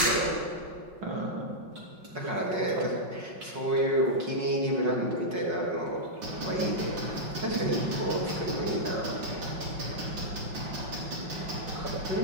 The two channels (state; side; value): late; left; 5.4 ms